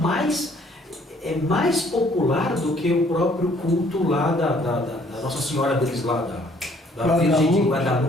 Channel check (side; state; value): both; normal; correlation 0.61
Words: popular do que o próprio culto lá da Nossa Senhora deles lá, da Virgem de